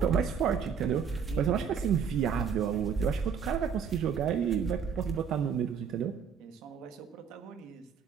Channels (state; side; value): quieter; left; 7.0 dB